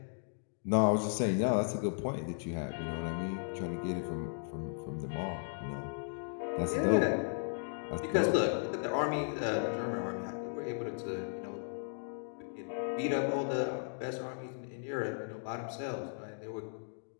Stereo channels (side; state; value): right; silent; digital silence